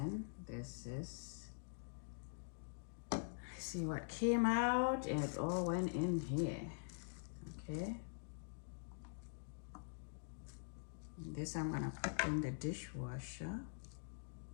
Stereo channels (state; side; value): silent; right; digital silence